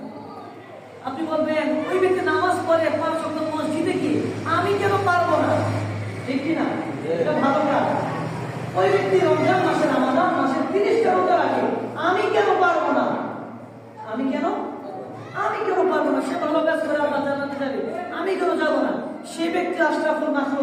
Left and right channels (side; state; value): both; identical; correlation 1.00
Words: আপনি বলবেন ওই ব্যক্তি নামাজ পড়ে 5 ওয়াক্ত মসজিদে গিয়ে আমি কেন পারবো না, ঠিক কি না? এটা ভালো কাজ। ওই ব্যক্তি রমজান মাসে রমাদান মাসে 30টা রোজা রাখে, আমি কেন পারবো না? আমি কেন পারবো না? সে ভালো কাজ করে আল্লাহ জান্নাতে যাবে, আমি কেন যাব না? সে ব্যক্তি আশরাফুল